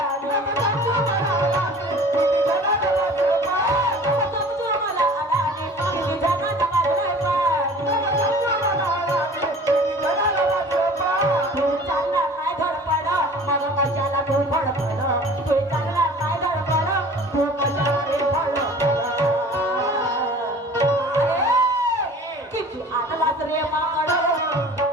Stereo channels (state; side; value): normal; both; correlation 0.44